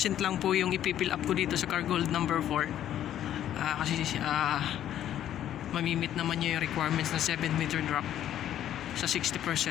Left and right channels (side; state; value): right; quieter; 11.2 dB